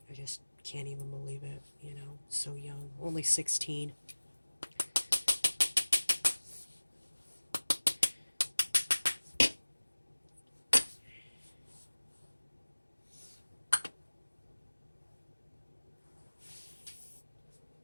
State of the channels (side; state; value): both; inverted; correlation -1.00